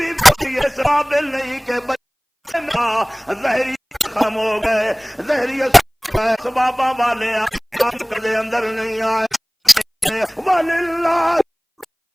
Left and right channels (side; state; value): both; identical; correlation 1.00